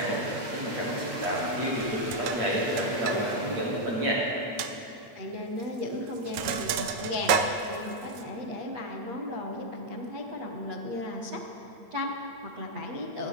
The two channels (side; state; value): left; late; 9.2 ms